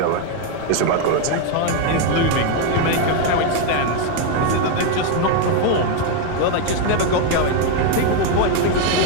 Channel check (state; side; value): different; both; correlation 0.01